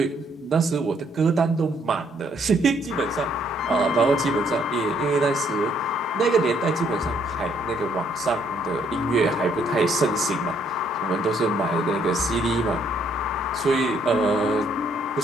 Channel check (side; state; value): both; normal; correlation 0.68